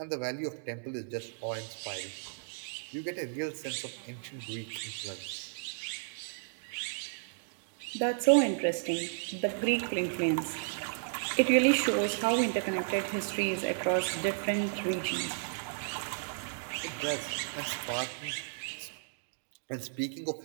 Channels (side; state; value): left; silent; digital silence